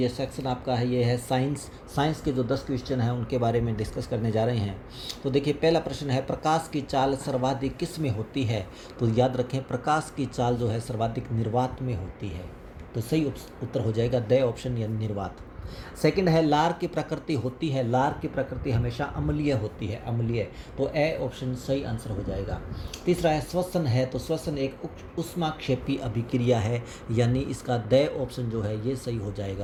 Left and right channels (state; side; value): identical; both; correlation 1.00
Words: सेक्शन आपका है ये है साइंस के जो 10 क्वेश्चन हैं उनके बारे में डिस्कस करने जा रहे हैं। तो देखिए पहला प्रश्न है प्रकाश की चाल सर्वाधिक किस में होती है। तो याद रखें प्रकाश की चाल जो है सर्वाधिक निर्वात में होती है। तो सही उत्तर हो जाएगा द ऑप्शन या निर्वात। सेकंड है लार की प्रकृति होती है, लार की प्रकृति हमेशा अम्लीय होती है, अम्लीय। तो ए ऑप्शन सही आंसर हो जाएगा। तीसरा है श्वसन है, तो श्वसन एक ऊष्माक्षेपी अभिक्रिया है, यानी इसका द ऑप्शन जो है ये सही हो